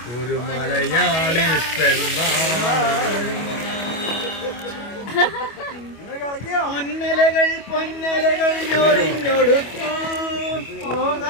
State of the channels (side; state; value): right; late; 25 ms